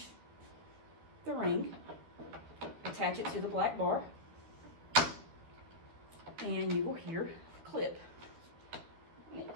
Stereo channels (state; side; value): late; left; 12 ms